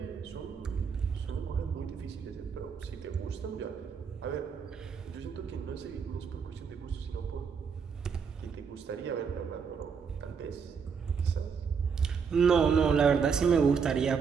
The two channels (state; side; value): quieter; left; 6.2 dB